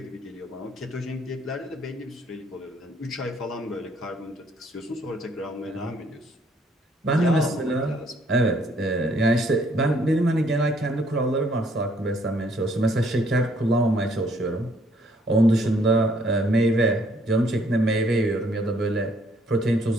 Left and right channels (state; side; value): normal; both; correlation 0.65